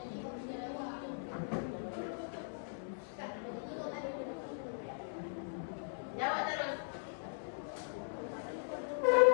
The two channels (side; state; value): right; silent; digital silence